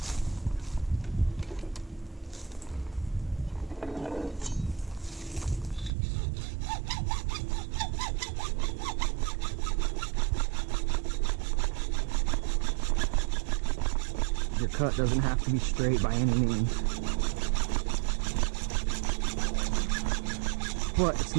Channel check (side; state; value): left; drops out; at 5.9 s